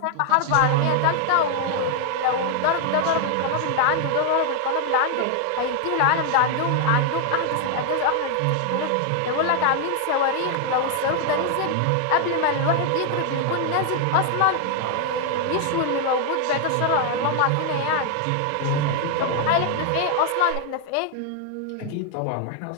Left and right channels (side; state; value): both; different; correlation 0.00